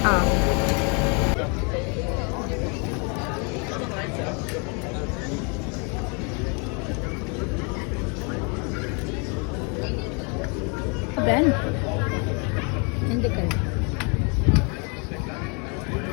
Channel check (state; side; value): quieter; right; 34.6 dB